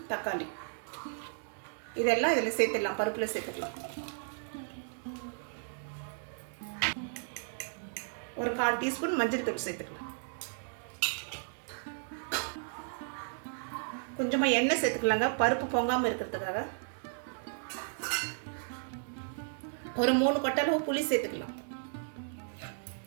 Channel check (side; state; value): left; silent; digital silence